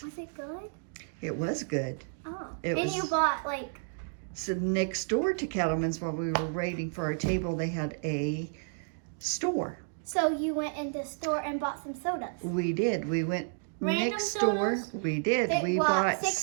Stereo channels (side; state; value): left; silent; digital silence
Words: Was it good? It was good. Oh. You bought like... So next door to Cattleman's, while we were waiting for our table, they had a store. So you went in the store and bought some sodas? We did. We went next sodas? door. We did. We bought bought 6